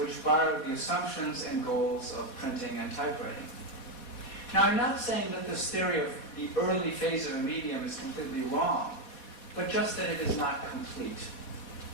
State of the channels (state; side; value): late; right; 4.1 ms